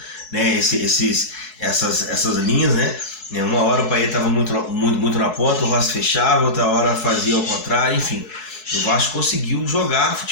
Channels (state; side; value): late; right; 4.7 ms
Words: essas linhas. Uma hora o Payet estava muito na ponta, o Rossi fechava, outra hora fazia ao contrário, enfim. o Vasco conseguiu jogar